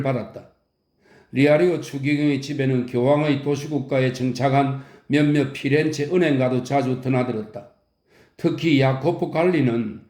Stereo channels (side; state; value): both; identical; correlation 1.00